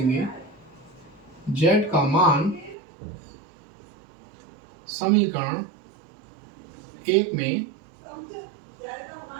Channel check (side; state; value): left; drops out; at 2.8 s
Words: z का मान समीकरण 1 में